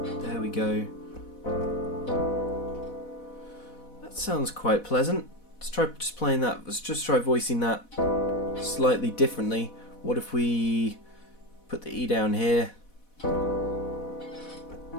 we go. That sounds quite pleasant. Let's try just playing that. Let's just try voicing that slightly differently. What if we put the E down here?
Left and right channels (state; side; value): late; right; 4.1 ms